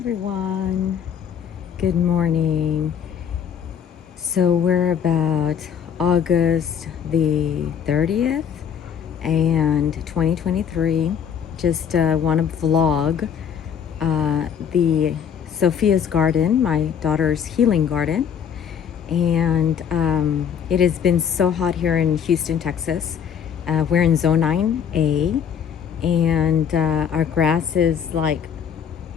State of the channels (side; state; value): right; quieter; 7.9 dB